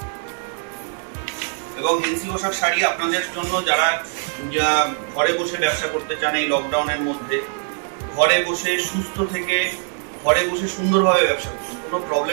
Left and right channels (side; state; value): left; silent; 56 dB below the other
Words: এবং এনসি পোশাক শাড়ি আপনাদের জন্য যারা ঘরে বসে ব্যবসা করতে চান এই লকডাউনের মধ্যে, ঘরে বসে সুস্থ থেকে ঘরে বসে সুন্দরভাবে ব্যবসা করুন, কোনো